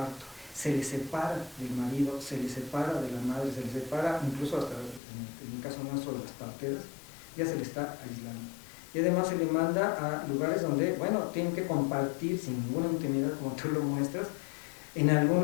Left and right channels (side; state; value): right; drops out; at 5.0 s